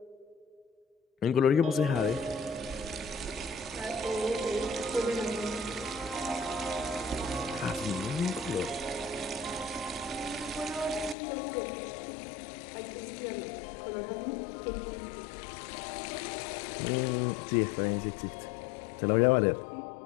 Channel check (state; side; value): drops out; right; at 11.2 s